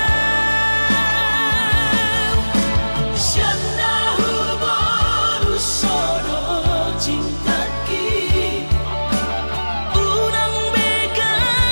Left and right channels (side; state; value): both; inverted; correlation -1.00